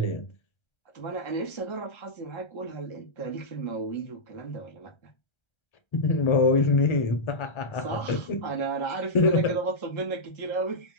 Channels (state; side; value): late; right; 1.3 ms